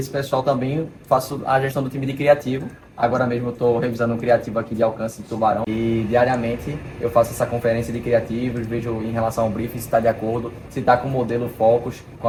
pessoal também eu faço a gestão do time de criativo. Agora mesmo eu estou revisando um criativo aqui de alcance de Tubarão. E diariamente eu faço essa conferência de criativos, vejo em relação ao briefing se está de acordo, se está com o modelo Focus, com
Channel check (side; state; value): both; identical; correlation 1.00